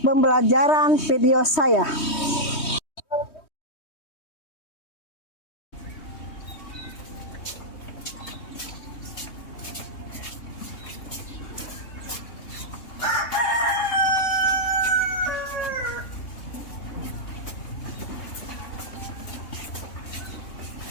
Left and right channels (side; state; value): right; late; 3.2 ms